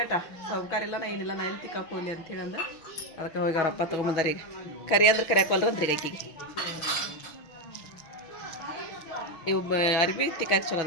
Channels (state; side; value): late; right; 6.2 ms